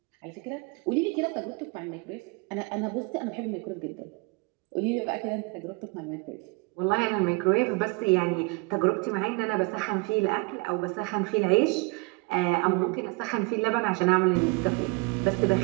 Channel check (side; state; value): left; quieter; 27.5 dB